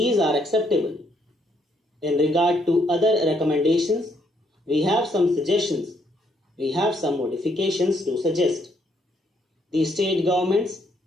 are acceptable. In regard to other recommendations, we have some suggestions. We have some modifications to suggest. The state governments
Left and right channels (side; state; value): both; normal; correlation 0.72